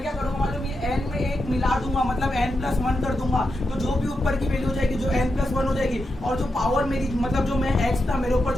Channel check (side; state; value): both; normal; correlation 0.87